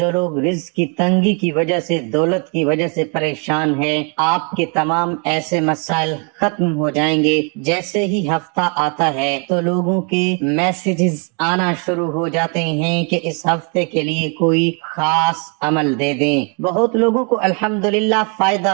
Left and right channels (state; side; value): quieter; left; 36.9 dB